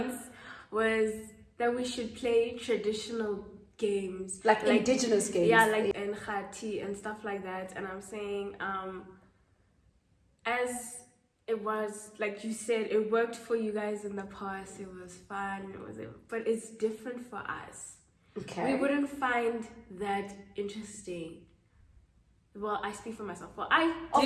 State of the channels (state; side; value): identical; both; correlation 1.00